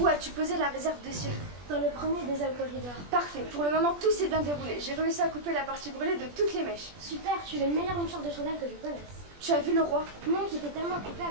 as-tu posé la réserve de cirque? Dans le premier des alcoolides. Parfait. Pour le moment, tout s'est bien déroulé. J'ai réussi à couper la partie brûlée de toutes les mèches. Super, tu es le meilleur lanceur de chandelle que je connaisse. Tu as vu le roi? Non, j'étais tellement occupée à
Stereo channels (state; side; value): late; left; 20 ms